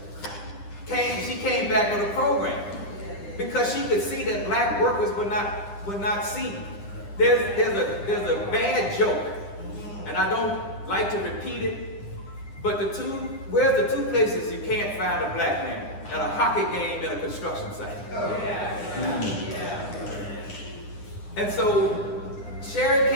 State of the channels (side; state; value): right; late; 9.9 ms